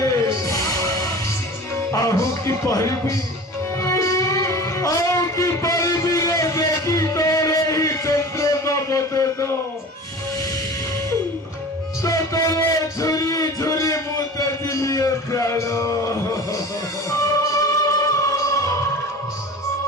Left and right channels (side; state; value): both; normal; correlation 0.38